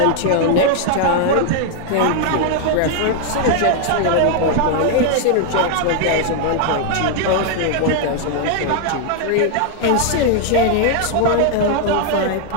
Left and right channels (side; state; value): both; different; correlation 0.00